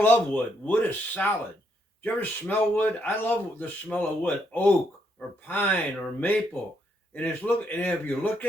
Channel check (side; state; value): both; normal; correlation 0.75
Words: love wood. Wood is solid. Do you ever smell wood? I love the smell of wood. Oak or pine or maple. And if you look